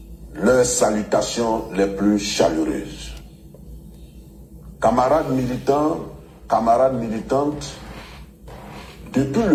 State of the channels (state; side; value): identical; both; correlation 1.00